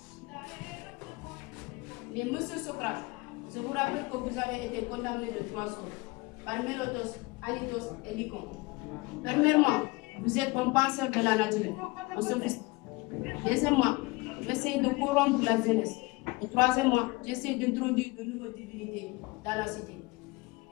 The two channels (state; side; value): quieter; right; 24.3 dB